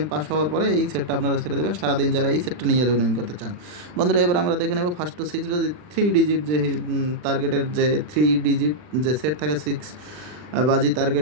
পাস হওয়ার পরে এই সেটটা আপনারা ছেড়ে দেবেন সারাদিন যারা এই সেটটা নিয়ে লুনিং করতে চান বন্ধুরা। এবার আমরা দেখে নেব ফার্স্ট টু 6 বাজি 3 ডিজিট যে টার্গেটের যে 3 ডিজিট যে সেট থাকে, 6 বাজি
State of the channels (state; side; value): late; left; 39 ms